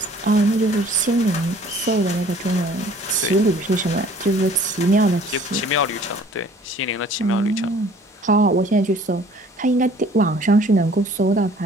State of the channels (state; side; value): normal; both; correlation 0.53